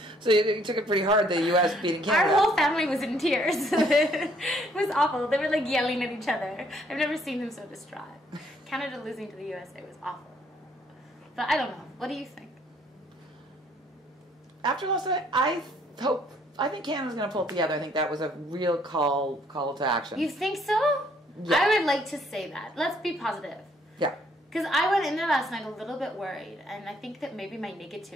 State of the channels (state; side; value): normal; both; correlation 0.65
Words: So you took it pretty hard, the U.S. beating Canada. Our whole family was in tears. It was awful. They were like yelling at each other. I've never seen them so distraught. Canada losing to the USA was awful. But I don't know. What do you think? After last night, I think Canada's going to pull it together. I think that was a real call to action. You think so? Yeah. I would like to say that. Let's be positive. Yeah. Because I went in there last night a little bit worried, and I think that maybe my